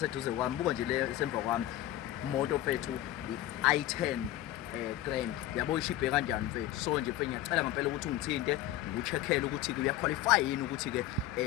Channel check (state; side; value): quieter; right; 13.5 dB